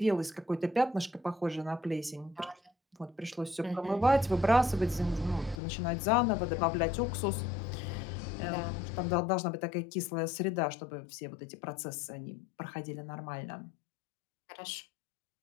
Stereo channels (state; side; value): drops out; right; at 5.6 s